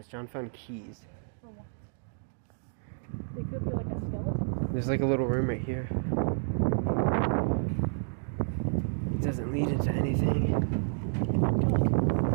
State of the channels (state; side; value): silent; left; digital silence